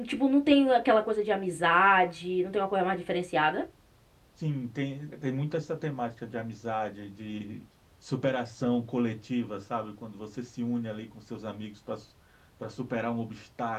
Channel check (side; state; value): both; identical; correlation 1.00